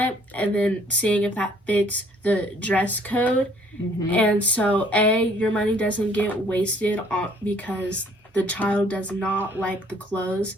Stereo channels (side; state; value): both; normal; correlation 0.60